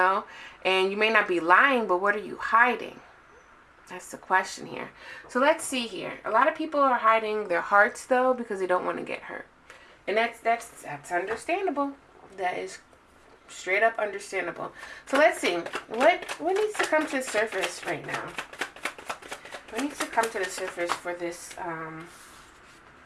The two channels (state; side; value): identical; both; correlation 1.00